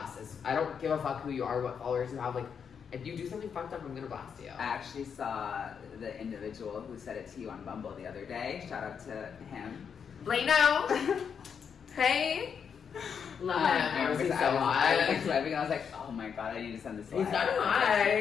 this. I don't give a fuck who you are, what followers you have. Like, if you do something fucked up, I'm gonna blast you. I actually saw the individual who said it to you on Bumble the other day. Shout out to him. Blano! Hey! Love him. I was so hot. I was swiping and I was like, oh my god, I need to send this to He's not hot.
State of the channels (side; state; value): right; quieter; 7.0 dB